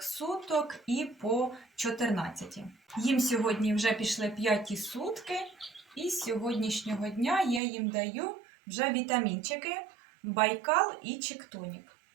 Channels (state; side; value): drops out; left; at 7.6 s